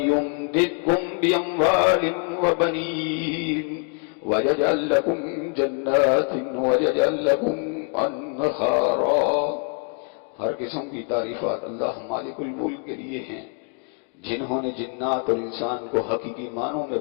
بأموال وبنين ويجعل لكم جنات ويجعل لكم انہارا۔ ہر قسم کی تعریفات اللہ مالک الملک کے لیے ہیں، جنہوں نے جنات اور انسان کو حقیقی معنوں میں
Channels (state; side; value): quieter; right; 37.9 dB